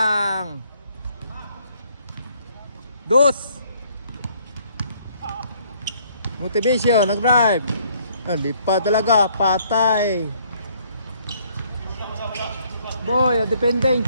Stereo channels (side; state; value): both; inverted; correlation -0.64